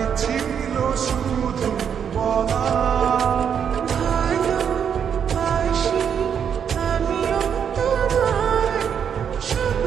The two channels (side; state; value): left; quieter; 7.8 dB